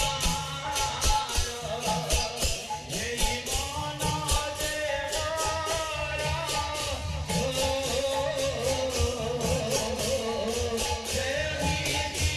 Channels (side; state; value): both; identical; correlation 1.00